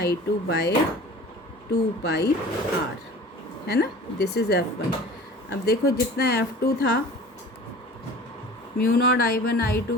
by 2πr, है ना, दिस इज़ F1। अब देखो जितना F2 था mu naught I1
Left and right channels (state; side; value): normal; both; correlation 0.42